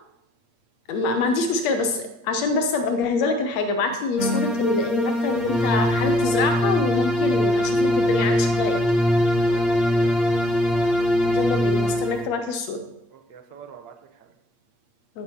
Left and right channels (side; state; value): right; late; 8.6 ms